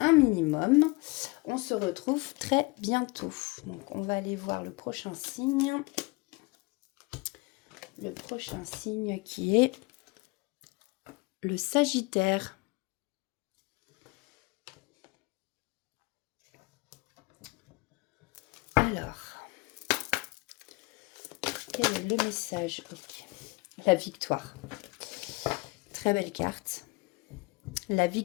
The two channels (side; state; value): right; quieter; 25.6 dB